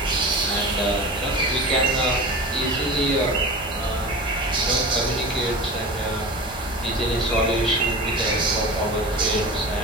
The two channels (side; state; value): both; normal; correlation 0.32